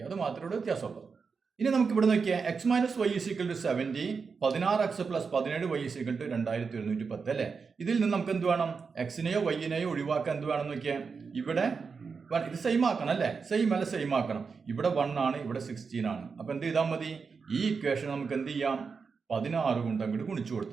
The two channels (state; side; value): quieter; left; 5.2 dB